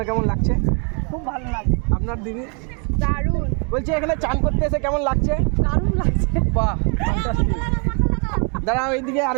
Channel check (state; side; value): quieter; left; 39.2 dB